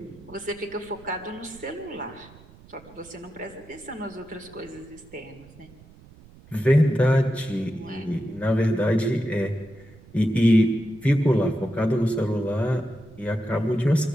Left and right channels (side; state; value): right; noise; rumble, 23 dB below the sound